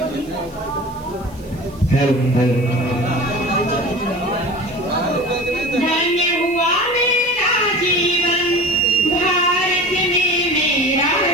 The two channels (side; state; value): right; noise; hiss, 26 dB below the sound